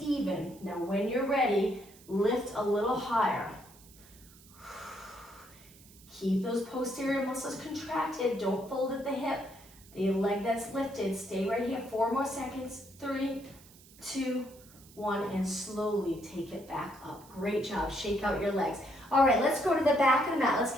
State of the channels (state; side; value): noise; right; hiss, 23 dB below the sound